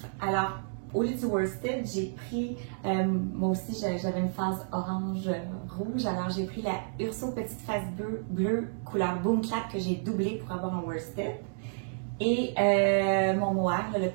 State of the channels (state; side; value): silent; left; digital silence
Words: Alors, au lieu du worsted, j'ai pris, moi aussi j'avais une phase orange-rouge, alors j'ai pris la Urso petite face bleue couleur Boom Clap que j'ai doublé pour avoir un worsted. Et mon mohair, le